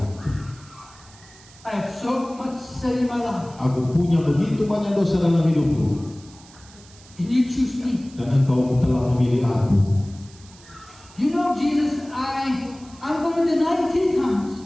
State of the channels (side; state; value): right; noise; hiss, 23 dB below the sound